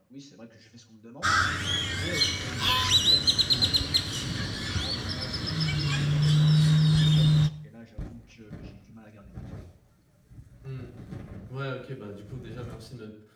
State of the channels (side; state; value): both; identical; correlation 1.00